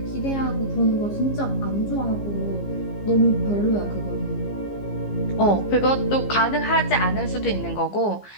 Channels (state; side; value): late; right; 15 ms